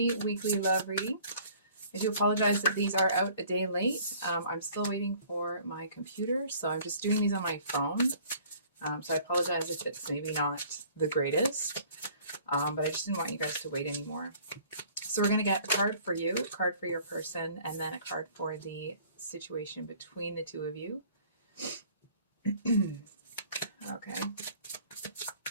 weekly love reading. I do apologize that these are out a day late. I'm still waiting for my computer, so I'm just doing these on my phone. So I apologize if it's maybe not the greatest, but I just didn't want you guys to wait anymore. So we're going to get a card for you, a card for your person, and then a card for the situation between the two of you. Okay.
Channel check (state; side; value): inverted; both; correlation -0.53